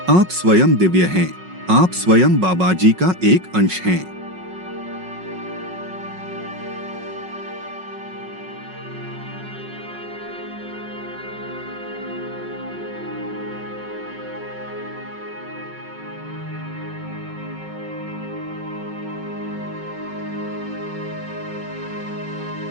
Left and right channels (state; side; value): late; left; 5.4 ms